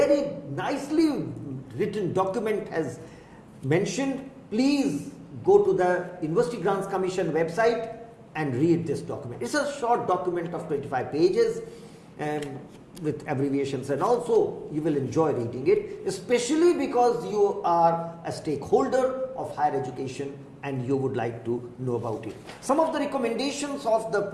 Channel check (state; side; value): identical; both; correlation 1.00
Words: nicely written document has mentioned. Please go to the University Grants Commission website and read this document. It's a short document of 25 pages with abbreviations, and also you will enjoy reading it, especially because you are a stakeholder of higher education and you would like to know about it. Some of the recommendations of the